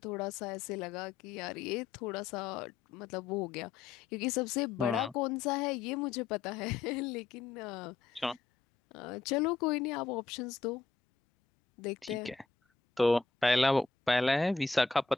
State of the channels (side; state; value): right; quieter; 4.6 dB